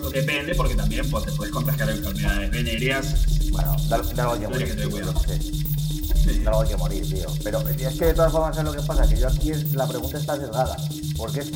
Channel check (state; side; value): identical; both; correlation 1.00